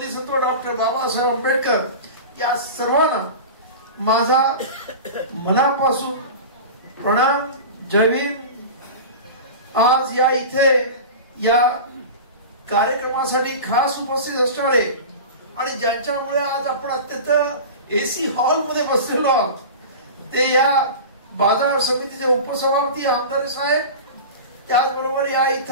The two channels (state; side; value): inverted; both; correlation -0.31